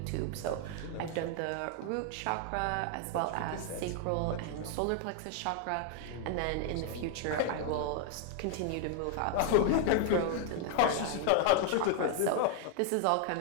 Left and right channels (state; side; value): different; both; correlation 0.00